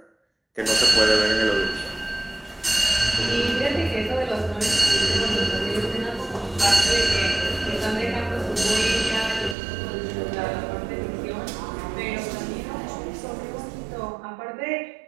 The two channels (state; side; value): drops out; left; at 9.6 s